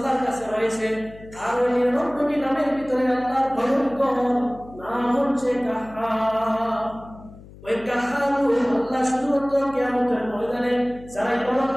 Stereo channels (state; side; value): noise; left; hum, 19 dB below the sound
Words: কাছে রয়েছে। আর ওই 99টি নামের ভিতরে আল্লাহর ভয়ঙ্কর নাম হচ্ছে কাহার। ওই কাহার আল্লাহ শুধুমাত্র কিয়ামতের ময়দানে যারা